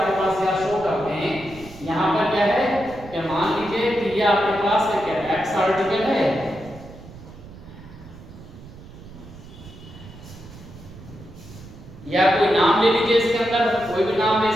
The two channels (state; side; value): noise; right; rumble, 17 dB below the sound